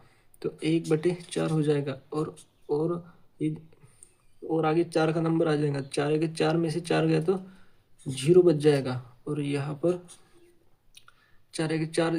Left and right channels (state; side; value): identical; both; correlation 1.00